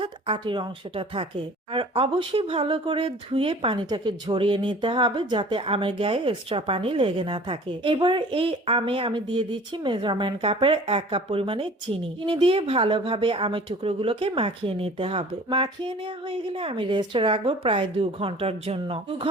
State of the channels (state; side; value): normal; both; correlation 0.46